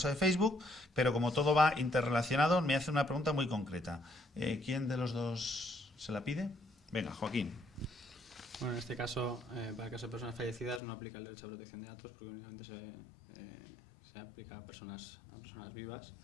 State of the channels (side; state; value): right; drops out; at 10.8 s